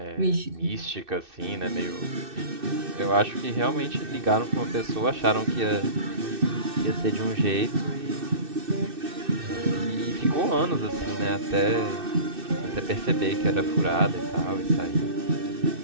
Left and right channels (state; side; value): late; left; 2.6 ms